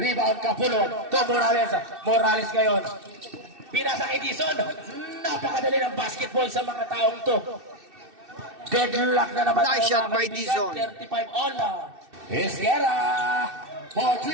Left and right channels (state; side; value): late; left; 2.6 ms